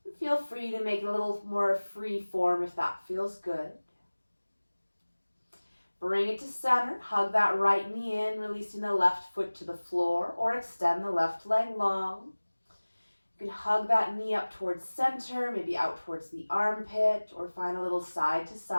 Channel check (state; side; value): inverted; both; correlation -1.00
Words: And feel free to make it a little more free form if that feels good. Bring it to center, hug that right knee in, releasing the left foot to the floor, or extend the left leg long. You can hug that knee up towards center, maybe out towards the armpit, or find a little side to